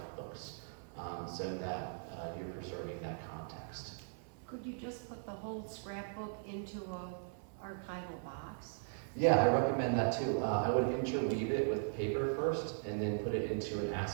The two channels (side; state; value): left; silent; 52 dB below the other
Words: so that you're preserving that context. Could you just put the whole scrapbook into a archival box? Yeah, I recommend that too. I would interweave it with paper first, and then put it into an